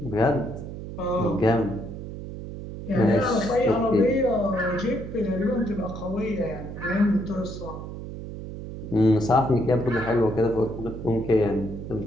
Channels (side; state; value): right; noise; hum, 9 dB below the sound